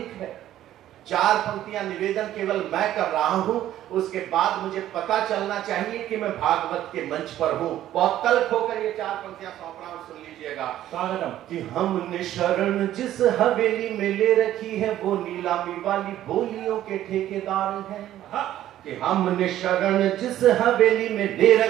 है। 4 पंक्तियां निवेदन केवल मैं कर रहा हूं, उसके बाद मुझे पता चलना चाहिए कि मैं भागवत के मंच पर हूं। बहुत तल्ख होकर ये 4 पंक्तियां सौंप रहा हूं, सुन लीजिएगा। कि हमने शरण जिस हवेली में ले रखी है वो नीलामी वाली बोलियों के ठेकेदार हैं। कि हमने शरण जिस हवेली में ले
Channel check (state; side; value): quieter; left; 12.7 dB